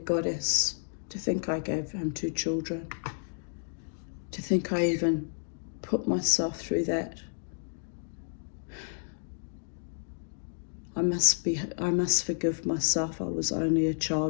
to think I gave him 2 children. To think I even put myself through that. I must forgive myself. I was only a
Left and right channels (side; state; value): right; silent; digital silence